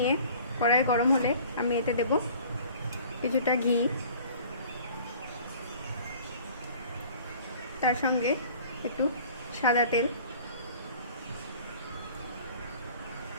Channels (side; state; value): both; inverted; correlation -0.48